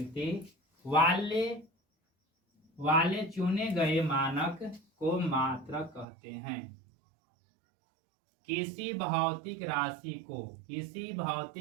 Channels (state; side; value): drops out; left; at 6.1 s